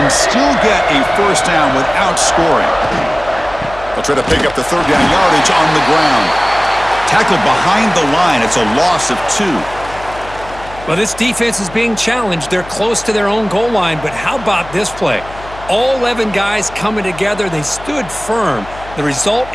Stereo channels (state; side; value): noise; left; hum, 17 dB below the sound